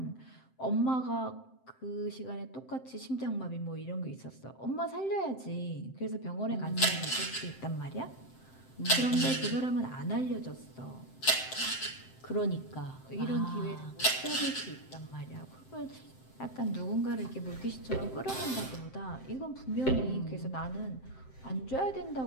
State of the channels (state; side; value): late; right; 7.7 ms